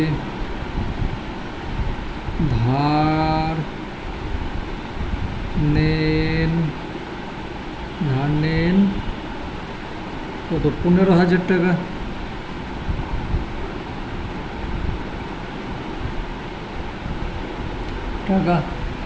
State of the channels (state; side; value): identical; both; correlation 1.00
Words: ধার নেন কত? 15,000 টাকা।